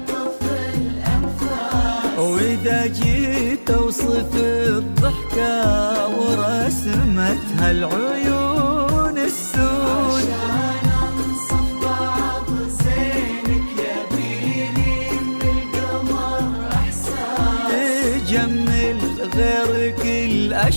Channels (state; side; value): inverted; both; correlation -1.00